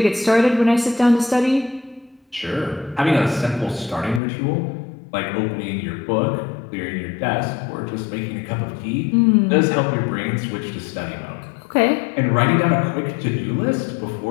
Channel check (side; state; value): right; drops out; at 4.2 s